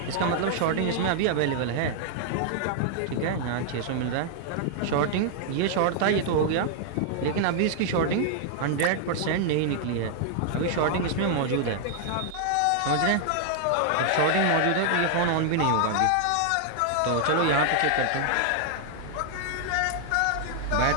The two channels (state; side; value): different; both; correlation -0.01